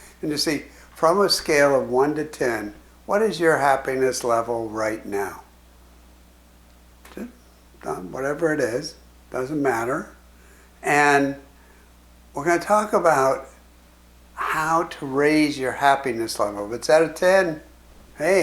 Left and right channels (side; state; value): both; identical; correlation 1.00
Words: and to see, from a scale of 1 to 10, what is your happiness level right now? Just, whatever it is, doesn't matter. And we're going to talk about how to raise your happiness level. If it's at a 10,